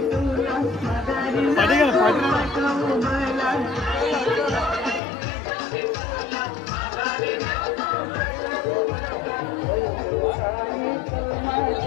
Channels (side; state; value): right; drops out; at 5.0 s